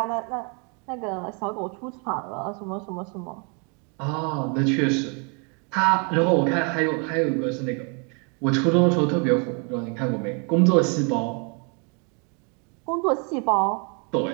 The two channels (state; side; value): quieter; left; 36.2 dB